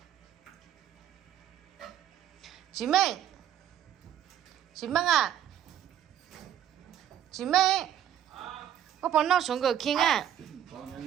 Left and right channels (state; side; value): quieter; left; 10.4 dB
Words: chị Minh à, chị Minh, có bọn nó xuống cửa kia à?